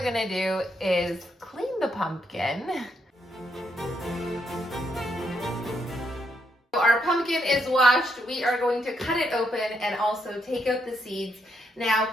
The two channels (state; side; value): normal; both; correlation 0.76